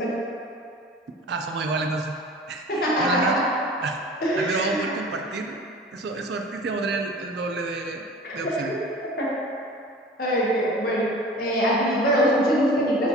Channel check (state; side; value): normal; both; correlation 0.41